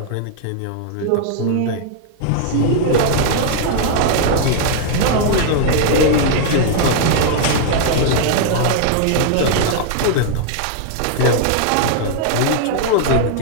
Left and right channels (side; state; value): both; different; correlation -0.01